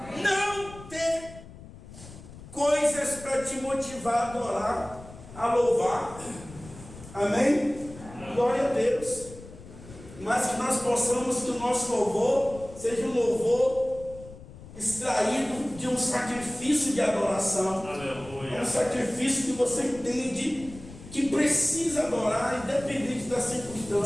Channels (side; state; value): left; noise; rumble, 17 dB below the sound